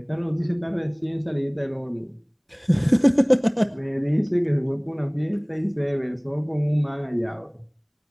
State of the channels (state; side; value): identical; both; correlation 1.00